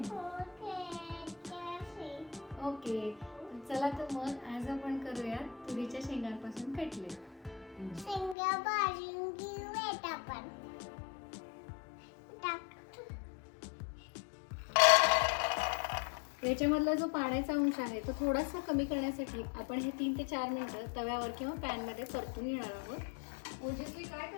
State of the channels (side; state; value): right; drops out; at 8.3 s